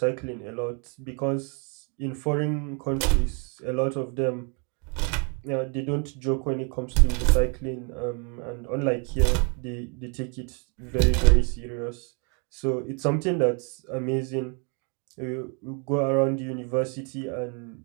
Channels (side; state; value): left; quieter; 37.3 dB